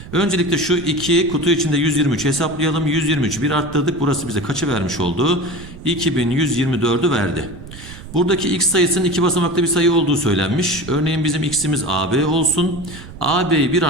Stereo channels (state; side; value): noise; right; rumble, 15 dB below the sound